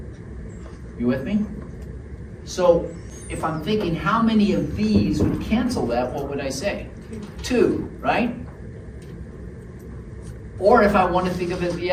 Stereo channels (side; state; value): both; identical; correlation 1.00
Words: You with me? So, if I'm thinking how many of these would cancel that, what would I say? 2, right? Or if I want to think of it the